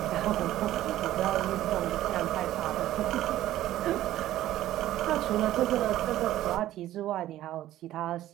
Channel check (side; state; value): left; quieter; 13.9 dB